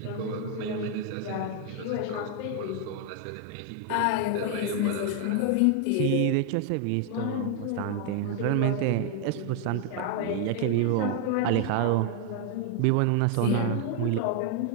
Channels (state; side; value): different; both; correlation 0.00